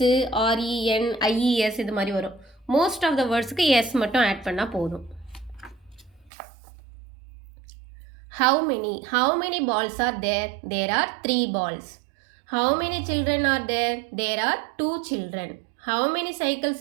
ஆர்இஎன், ஐஇஎஸ் இது மாதிரி வரும். மோஸ்ட் ஆஃப் த வேர்ட்ஸுக்கு எஸ் மட்டும் ஆட் பண்ணால் போதும். How many balls are there? There are 3 balls. How many children are there? There are 2 children. How many cycles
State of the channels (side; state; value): left; drops out; at 6.3 s